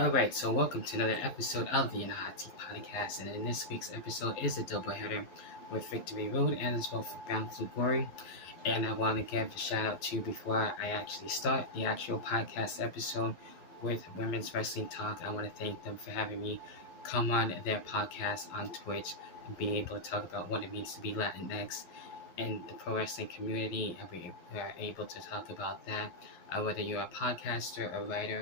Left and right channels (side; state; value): right; late; 11 ms